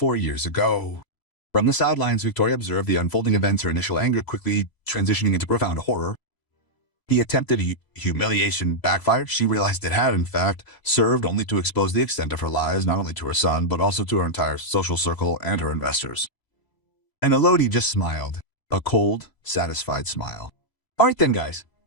years ago." From the sidelines, Victoria observed the unfolding events, her initial anger quickly transitioning into profound horror. The attempted humiliation backfired. She realized it had, in fact, served only to expose the extent of her lies, not only to her son, but also to her entire social circle and her investors. And Elodie just smiled, a cold, satisfied smile. "All right then, guys,"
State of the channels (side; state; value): right; late; 3.0 ms